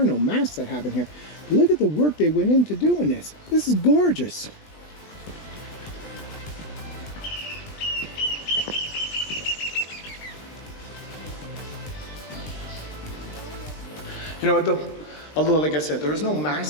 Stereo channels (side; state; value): right; late; 20 ms